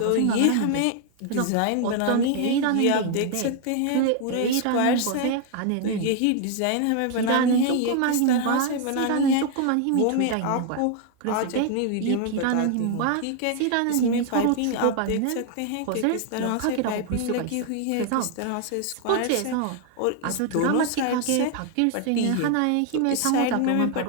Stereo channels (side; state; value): both; different; correlation 0.00